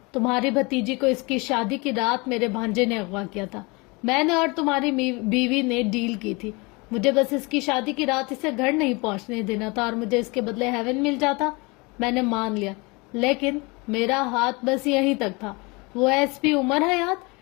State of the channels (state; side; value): quieter; right; 26.9 dB